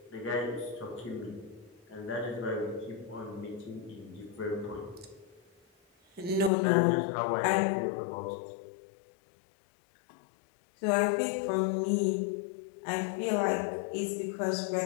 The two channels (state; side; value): drops out; right; at 6.5 s